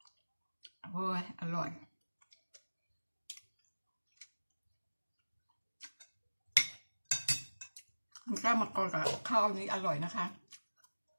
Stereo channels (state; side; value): inverted; both; correlation -1.00